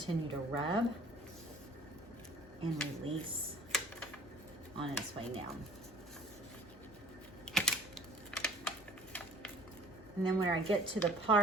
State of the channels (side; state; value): both; normal; correlation 0.49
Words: to rub and release on its way down. And then when I get to the